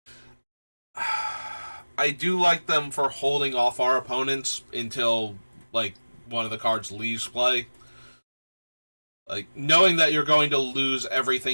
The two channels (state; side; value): inverted; both; correlation -1.00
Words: I do like them for holding off our opponents until, like, one of the cards leaves play. Like, knowing that you're going to lose